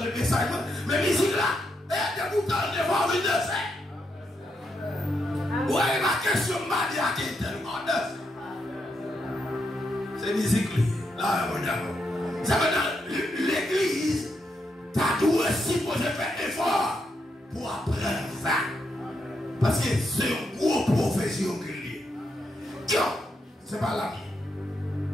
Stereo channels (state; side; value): normal; both; correlation 0.81